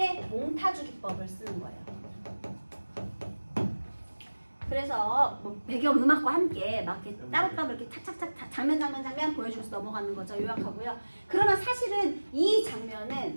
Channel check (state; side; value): inverted; both; correlation -1.00